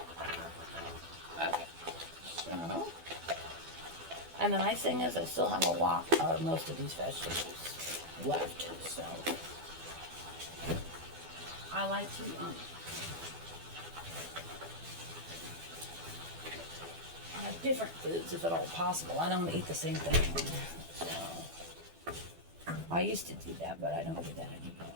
Okay, so. And the nice thing is I still have a lot of most of these vegetables left, so I like to have different foods if at all possible. I don't eat the same thing, so I used to do that, but I don't do that anymore.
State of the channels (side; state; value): left; late; 12 ms